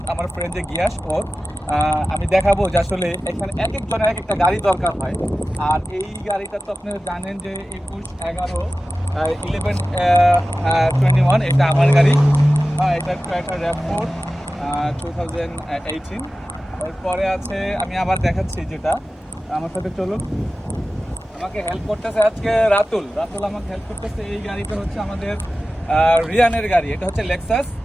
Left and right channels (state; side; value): normal; both; correlation 0.95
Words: আমার ফ্রেন্ড যে গিয়াস ওর। আমি দেখাবো যে আসলে এখানে এক একজনের এক একটা গাড়ি দরকার হয়। আর এই গাড়িটা তো আপনারা জানেন যে 1121 এটা আমার গাড়ি। এটা একটা র্যাপ4 2018। এরপরে আছে, আমি আবার দেখাচ্ছি যেটা, আমার সাথে চলুন। আমাকে হেল্প করতেছে আজকে রাতুল আমাকে হেল্প করতেছে। এই গাড়িটা হচ্ছে আমাদের রিয়ানের গাড়ি। এটা হচ্ছে লেক্সাস,